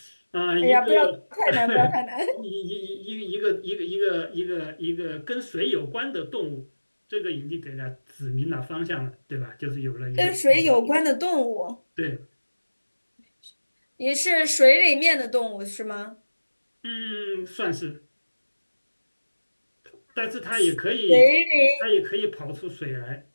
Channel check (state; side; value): inverted; both; correlation -1.00